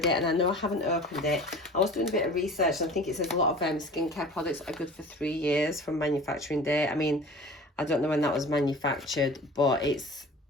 and I know I haven't opened it. I was doing a bit of research, and I think it says a lot of skincare products are good for 3 years from manufacturing date. I mean, I don't know when that was manufactured, but it's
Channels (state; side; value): normal; both; correlation 0.41